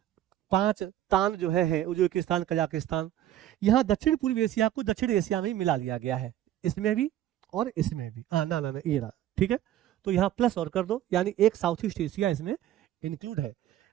5 तान जो है उज्बेकिस्तान कजाकिस्तान। यहाँ दक्षिण पूर्वी एशिया को दक्षिण एशिया में ही मिला लिया गया है, इसमें भी और इसमें भी। ना ये रहा। ठीक है, तो यहाँ प्लस और कर दो, यानी एक साउथ ईस्ट एशिया इसमें इंक्लूड है।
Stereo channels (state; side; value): quieter; left; 12.6 dB